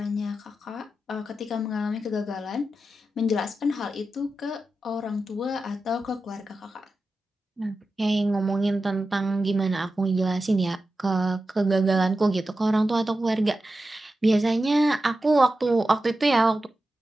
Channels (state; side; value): normal; both; correlation 0.92